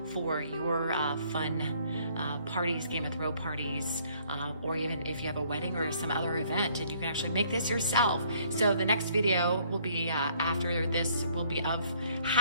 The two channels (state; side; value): inverted; both; correlation -0.63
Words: for your fun parties, Game of Thrones parties, or even if you have a wedding or some other event, and you can actually make this yourself. So the next video will be after this will be of